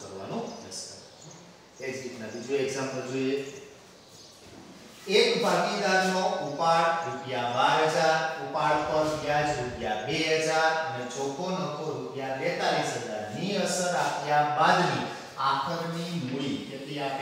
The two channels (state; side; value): identical; both; correlation 1.00